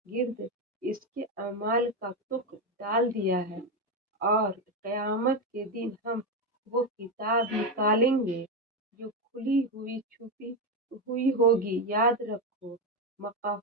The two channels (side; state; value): both; normal; correlation 0.10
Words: گرد اس کے اعمال کا تخم ڈال دیا ہے، اور قیامت کے دن ہم وہ کتاب نکالیں گے جو کھلی ہوئی چھپی ہوئی ہوگی۔ یاد رکھو